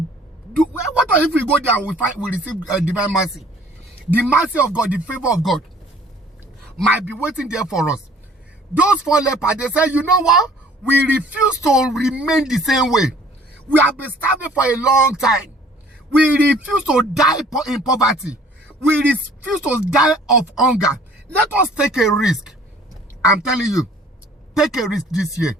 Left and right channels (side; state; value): both; normal; correlation 0.54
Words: do. What if we go there and we receive divine mercy? The mercy of God, the favor of God might be waiting there for us. Those 4 lepers, they say, you know what? We refuse to remain the same way. We have been starving for a long time. We refuse to die in poverty. We refuse to die of hunger. Let us take a risk. I'm telling you, take a risk this year.